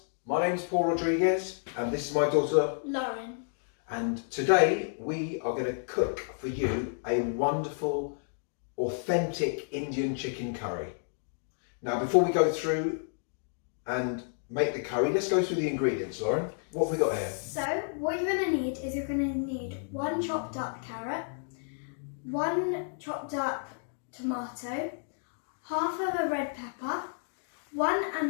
my name's Paul Rodrigues and this is my daughter Lauren. And today we are going to cook for you a wonderful, authentic Indian chicken curry. Now before we go through and make the curry, let's go through the ingredients, Lauren. What have we got here? So what you're going to need is you're going to need 1 chopped up carrot, 1 chopped up tomato, half of a red pepper, 1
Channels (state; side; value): silent; right; digital silence